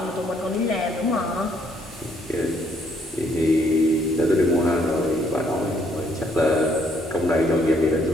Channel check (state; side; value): normal; both; correlation 0.68